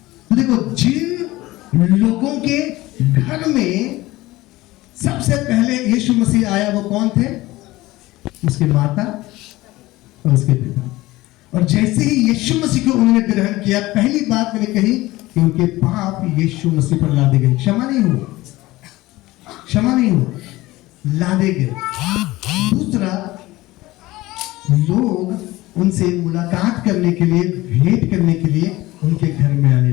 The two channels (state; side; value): quieter; right; 18.6 dB